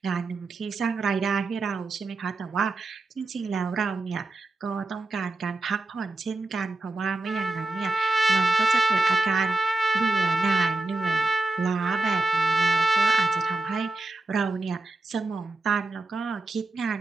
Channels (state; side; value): quieter; left; 3.1 dB